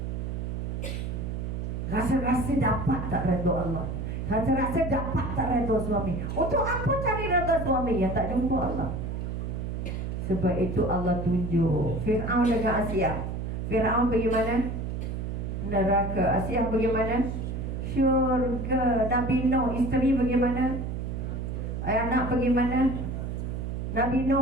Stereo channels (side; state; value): right; noise; hum, 4 dB below the sound